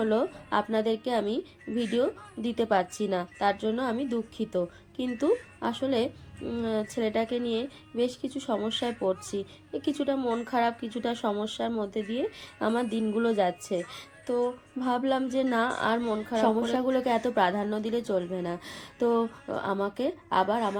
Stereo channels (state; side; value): identical; both; correlation 1.00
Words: আপনাদেরকে আমি ভিডিও দিতে পারছি না, তার জন্য আমি দুঃখিত। কিন্তু আসলে ছেলেটাকে নিয়ে বেশ কিছু সমস্যায় পড়ছি। কিছুটা মন খারাপ, কিছুটা সমস্যার মধ্যে দিয়ে আমার দিনগুলো যাচ্ছে। তো ভাবলাম যে না, আর মন খারাপ সমস্যাগুলোকে এত প্রাধান্য দিলে চলবে না। তো আমাকে আবার